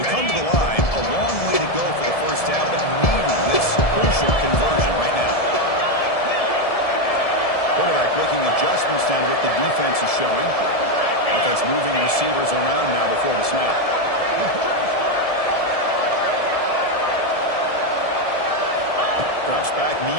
Adjustments down to what the defense is showing. Offense moving receivers around now before the snap. Drops back,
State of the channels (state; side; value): late; right; 1.7 ms